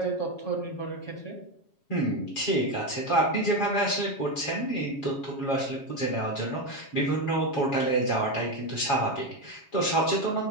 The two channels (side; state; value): right; late; 7.2 ms